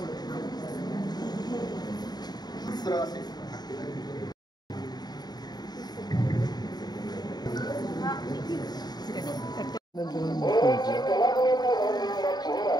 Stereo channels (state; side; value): late; right; 0.20 ms